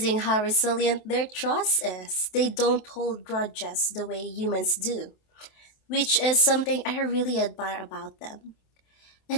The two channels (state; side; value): late; right; 27 ms